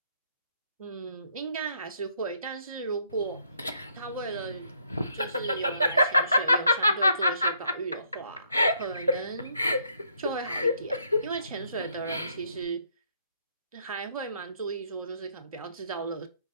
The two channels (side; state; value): both; inverted; correlation -0.69